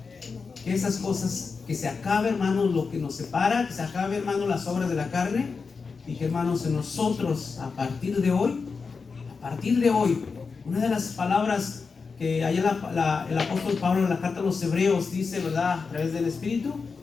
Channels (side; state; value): right; quieter; 4.9 dB